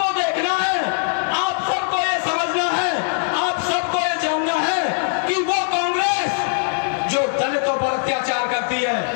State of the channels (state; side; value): silent; right; digital silence